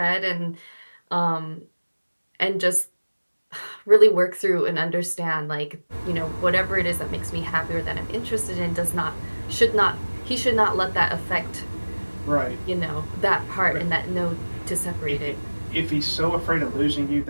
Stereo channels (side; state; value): both; inverted; correlation -1.00